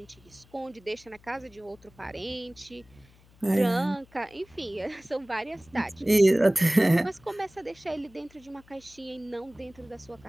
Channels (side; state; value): left; noise; hum, 27 dB below the sound